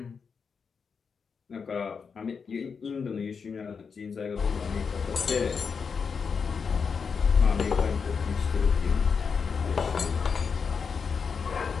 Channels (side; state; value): right; quieter; 5.8 dB